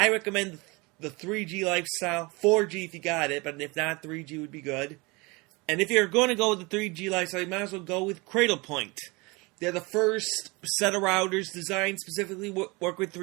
recommend the 3G lifestyle, 4G if you got it, but if not, 3G would be good. And if you're going to go with the 3G lifestyle, you might as well go with Cradlepoint. They're the first set of routers designed specifically work with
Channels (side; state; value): left; quieter; 25.9 dB